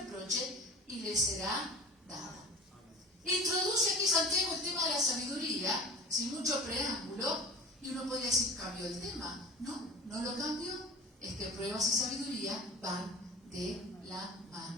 y le será dada. Introduce aquí Santiago el tema de la sabiduría, sin mucho preámbulo, y uno podría decir, ¿cambió el tema? No lo cambió, es que pruebas y sabiduría van de la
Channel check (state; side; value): normal; both; correlation 0.37